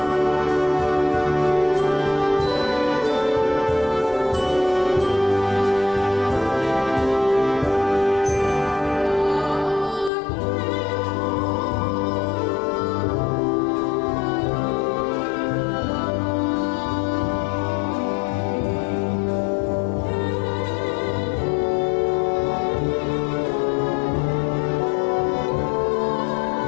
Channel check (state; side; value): drops out; right; at 10.1 s